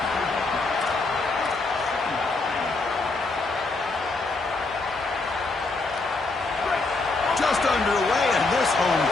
Just underway, and this home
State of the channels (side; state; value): right; quieter; 3.5 dB